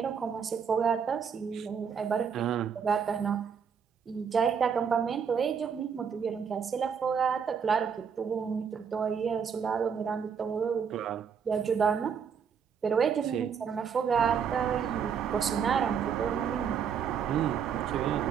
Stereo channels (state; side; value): quieter; left; 7.0 dB